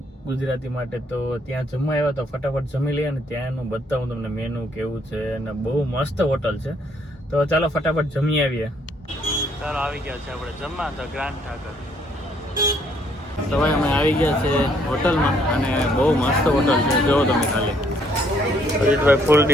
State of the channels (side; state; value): both; normal; correlation 0.67